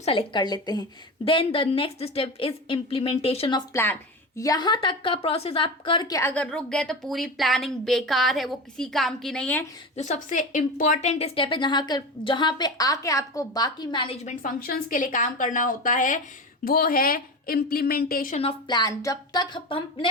सेलेक्ट कर लेते हैं। Then the next step is implementation of plan. यहाँ तक का प्रोसेस आप करके अगर रुक गए तो पूरी प्लानिंग बेकार है, वो किसी काम की नहीं है। जो सबसे इंपॉर्टेंट स्टेप है जहाँ पे आके आपको बाकी मैनेजमेंट फंक्शंस के लिए काम करना होता है, वो है इम्प्लीमेंटेशन ऑफ प्लान। जब तक हमने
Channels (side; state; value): both; normal; correlation 0.26